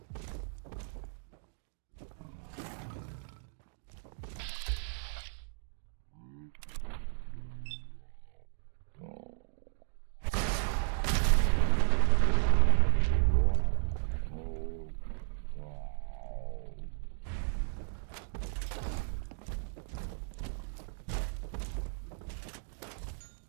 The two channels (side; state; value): left; silent; digital silence